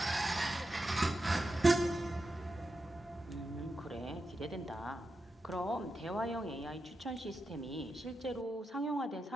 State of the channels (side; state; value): both; normal; correlation 0.89